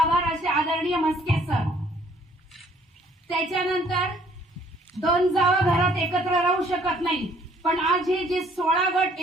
असे आदरणीय म्हस्के सर. त्याच्यानंतर 2 जावा घरात एकत्र राहू शकत नाही, पण आज हे जे 16 गट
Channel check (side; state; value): both; normal; correlation 0.61